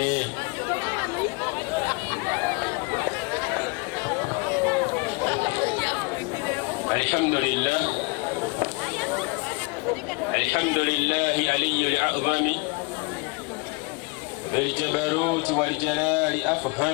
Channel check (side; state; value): right; quieter; 29.5 dB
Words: الحمد لله علي الأعظم بالجبروت والجلال